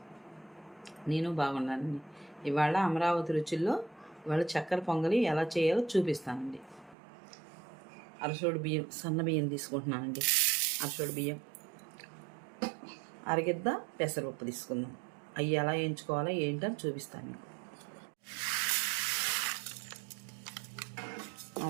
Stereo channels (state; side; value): drops out; left; at 7.0 s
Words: నేను బాగున్నానండి. ఇవాళ అమరావతి రుచుల్లో ఇవాళ చక్కెర పొంగలి ఎలా చేయాలో చూపిస్తానండి. అరసోడు బియ్యం, సన్న బియ్యం తీసుకుంటున్నానండి. అరసోడు బియ్యం, అరగిద్ద పెసరపప్పు తీసుకుందాం. అవి ఎలా వేయించుకోవాలో ఏంటని చూపిస్తాను మీకు.